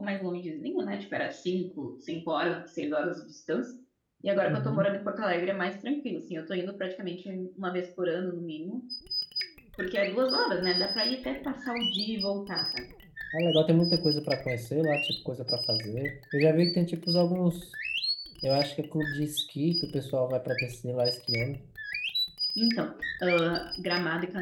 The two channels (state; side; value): identical; both; correlation 1.00